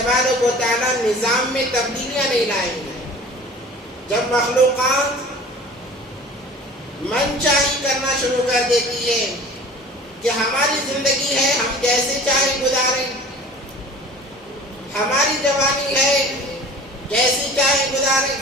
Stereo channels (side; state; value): both; normal; correlation 0.43